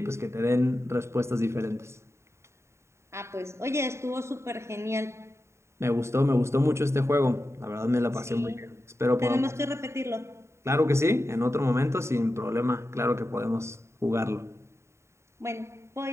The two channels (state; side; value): late; left; 0.13 ms